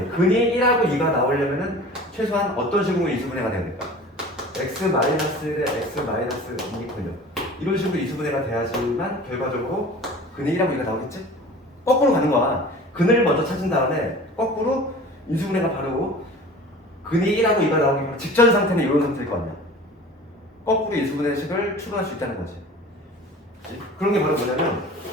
근이 1하고 2가 나오려면은 최소한 어떤 식으로 인수분해가 돼야 될까? x 마이너스 대 x 마이너스 2이군요. 이런 식으로 인수분해가 돼야지만 결과적으로 근이 1하고 2가 나오겠지? 거꾸로 가는 거야. 근을 먼저 찾은 다음에 거꾸로 인수분해가 바로 근이 1하고 2가 나오기 바로 직전 상태는 이런 상태일 거 아니야. 거꾸로 인수분해식을 추론할 수 있다는 거지. 그런 게 바로 뭐냐면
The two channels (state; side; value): normal; both; correlation 0.41